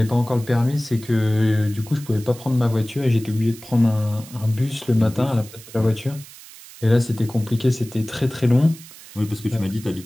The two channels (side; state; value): right; noise; hiss, 18 dB below the sound